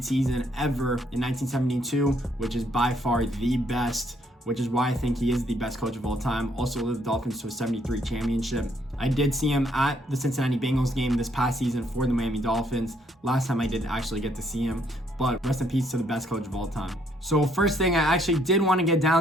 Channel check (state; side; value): normal; both; correlation 0.69